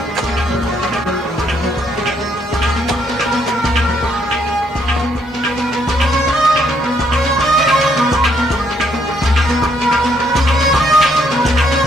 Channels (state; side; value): normal; both; correlation 0.71